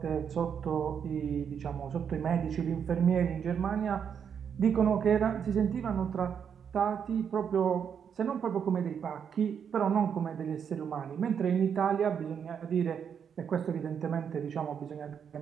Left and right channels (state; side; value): quieter; left; 7.5 dB